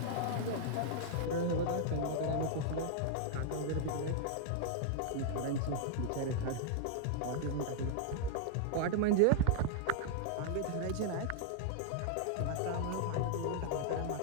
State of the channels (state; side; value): different; both; correlation -0.01